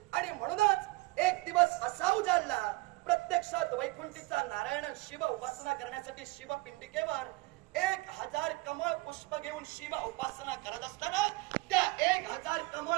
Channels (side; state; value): left; quieter; 22.7 dB